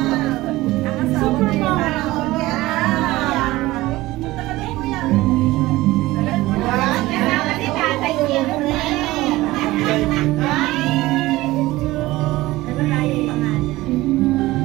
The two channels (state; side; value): quieter; left; 18.3 dB